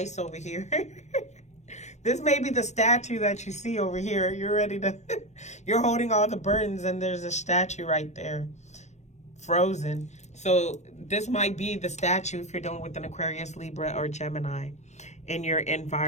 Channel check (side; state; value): right; late; 0.33 ms